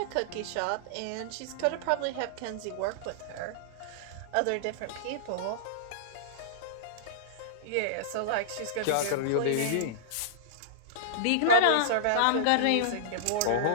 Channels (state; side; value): different; both; correlation -0.02